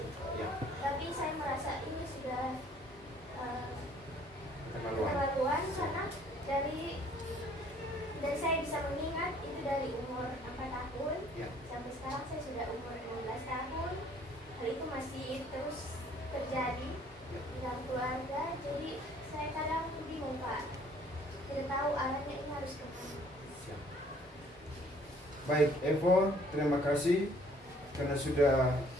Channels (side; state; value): both; normal; correlation 0.59